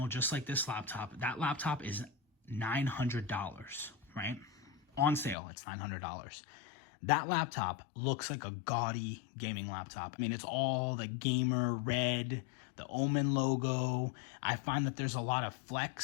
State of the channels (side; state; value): right; drops out; at 5.4 s